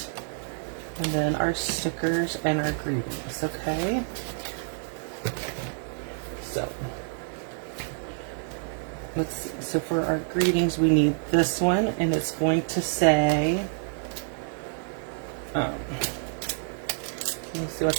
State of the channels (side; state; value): left; silent; digital silence